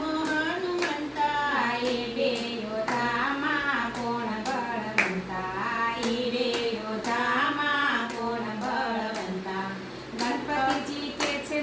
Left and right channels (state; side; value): identical; both; correlation 1.00